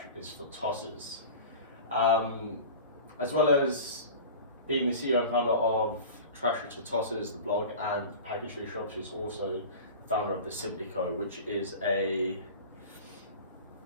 is for Tossers. As well as being the CEO and founder of Trash is for Tossers, the blog, and Package Free Shop, she's also the founder of the Simply Co, which is a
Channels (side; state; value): both; inverted; correlation -0.35